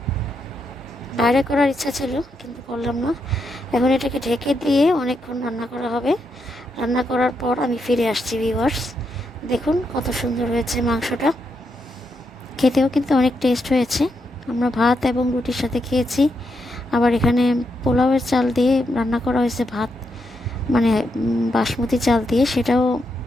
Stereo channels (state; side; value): normal; both; correlation 0.82